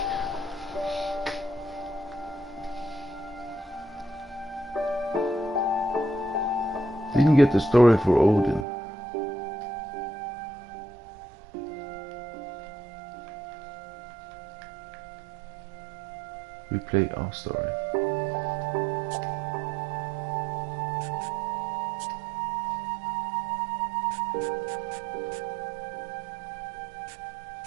Didn't get the story for Odin. We play our story.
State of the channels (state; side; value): drops out; left; at 8.7 s